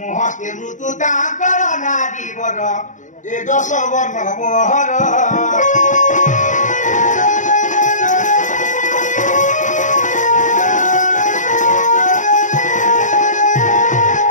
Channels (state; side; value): late; right; 0.36 ms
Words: मृत्यु तांकर नारी बर ए 10 वर्ण मोहर